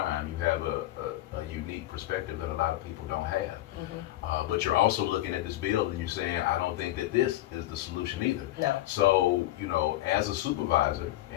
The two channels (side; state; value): right; quieter; 15.5 dB